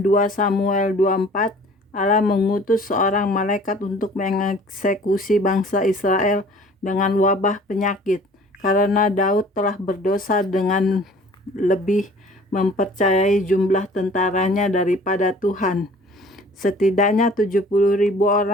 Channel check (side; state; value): both; normal; correlation 0.50